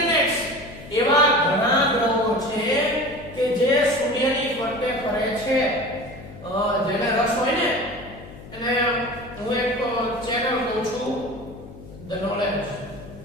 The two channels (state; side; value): noise; left; hum, 17 dB below the sound